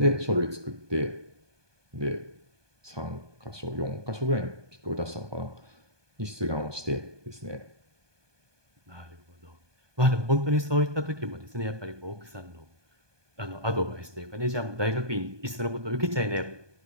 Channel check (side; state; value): left; late; 1.2 ms